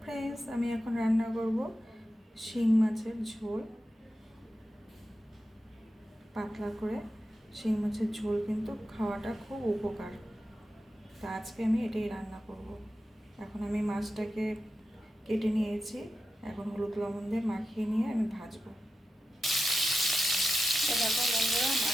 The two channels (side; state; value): both; normal; correlation 0.91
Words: friends, আমি এখন রান্না করব শিং মাছের ঝোল। পাতলা করে শিং মাছের ঝোল কিন্তু খাওয়াটা খুব উপকার। তা আজকে আমি এটাই রান্না করব। এখন আমি মাছটাকে কেটে নিয়েছি, এখন হলুদ লবণ দিয়ে মাখিয়ে নিয়ে আমি ভাজবো। দেখো বন্ধুরা,